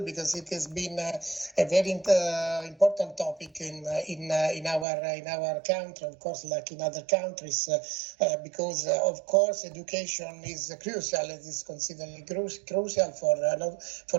it has been a very important topic in our country, of course, like in other countries, because of course education is crucial. It is considered crucial for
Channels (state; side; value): drops out; left; at 4.9 s